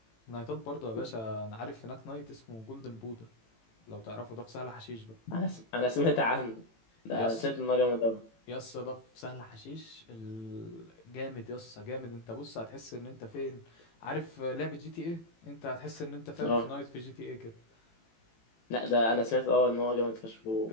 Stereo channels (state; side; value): late; right; 18 ms